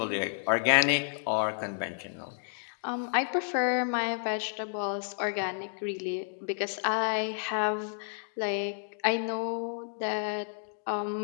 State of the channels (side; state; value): right; silent; digital silence